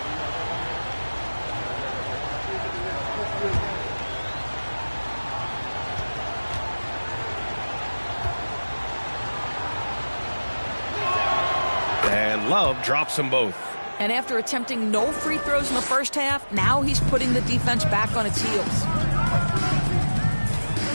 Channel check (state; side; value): inverted; both; correlation -1.00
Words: Love drops them both. And after attempting no free throws in the first half, now he's putting the defense back on its heels.